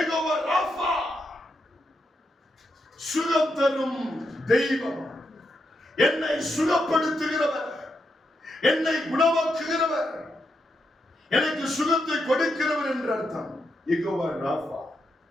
ராஃபா, சுகம் தரும் தெய்வம், என்னை சுகப்படுத்துகிறவர், என்னை குணமாக்குகிறவர், எனக்கு சுகத்தை கொடுக்கிறவர் என்று அர்த்தம். யெகோவா ராஃபா.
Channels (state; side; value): normal; both; correlation 0.83